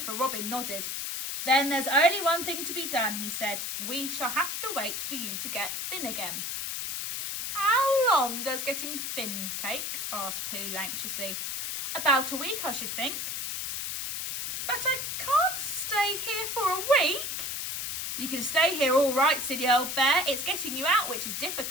Robin nodded. Then there's only one thing to be done, he said. We shall have to wait for you to get thin again. How long does getting thin take? Asked Pooh anxiously. About a week, I should think. But I can't stay here for a week. You can stay here all right, silly old bear. It's getting you out which is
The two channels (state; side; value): noise; left; hiss, 3 dB below the sound